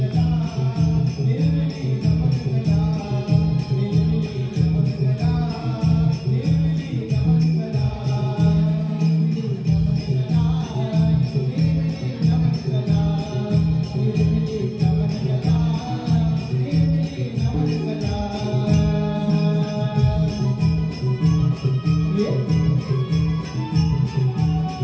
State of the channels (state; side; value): identical; both; correlation 1.00